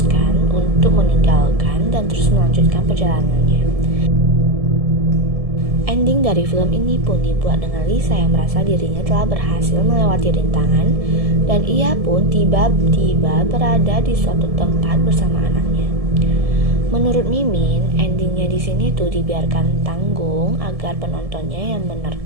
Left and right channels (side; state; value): left; late; 1.7 ms